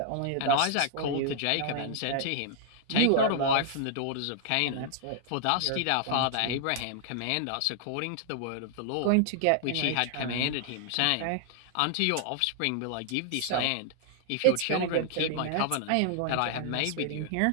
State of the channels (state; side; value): different; both; correlation -0.01